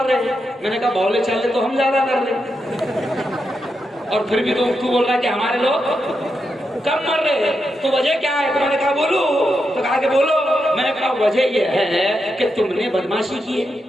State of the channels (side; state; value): both; normal; correlation 0.85